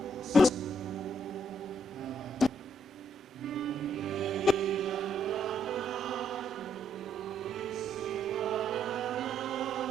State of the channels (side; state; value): both; normal; correlation 0.73